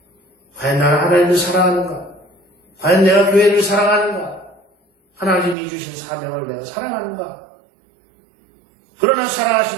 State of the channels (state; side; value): drops out; left; at 5.6 s